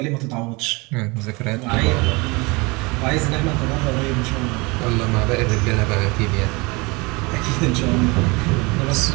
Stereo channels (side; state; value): left; quieter; 26.1 dB